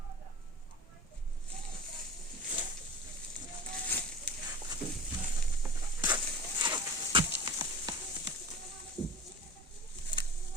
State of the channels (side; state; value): both; normal; correlation 0.36